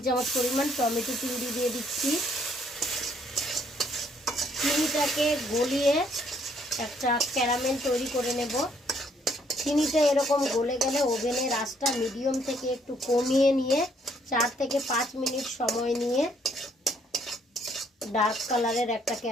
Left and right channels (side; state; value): both; normal; correlation 0.67